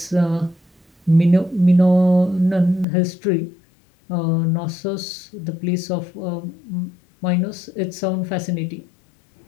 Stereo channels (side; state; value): right; drops out; at 2.9 s